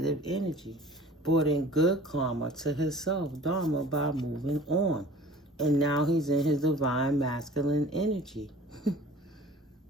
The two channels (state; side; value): normal; both; correlation 0.45